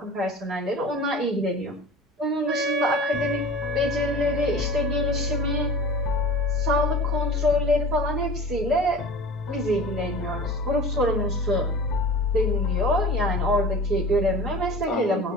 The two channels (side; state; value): both; normal; correlation 0.38